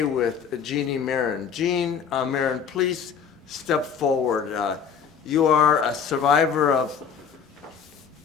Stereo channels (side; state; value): right; quieter; 7.0 dB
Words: with Jeannie Marron. Jean Marron, please step forward. You are a survivor of